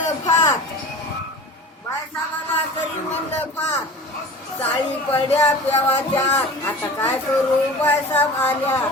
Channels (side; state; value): both; normal; correlation 0.38